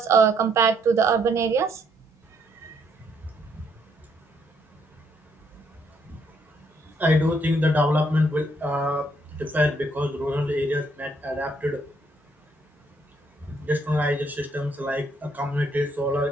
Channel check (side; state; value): both; normal; correlation 0.71